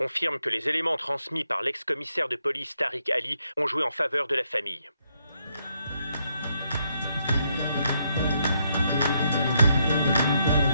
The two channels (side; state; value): both; inverted; correlation -0.76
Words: que les éléments transmis par l'ex-commissaire de police Tariq Ali ont joué en faveur de la famille.